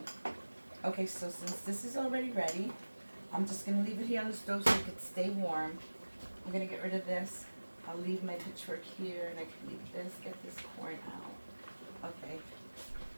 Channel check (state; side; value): inverted; both; correlation -1.00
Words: okay, so since this is already ready, I'm just going to leave it here on the stove so it can stay warm. I'm going to get rid of this. I'll leave my pitchfork here, and I can leave this, get this corn out. Okay.